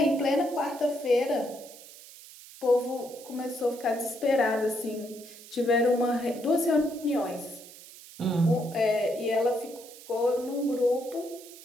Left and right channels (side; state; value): right; noise; hiss, 18 dB below the sound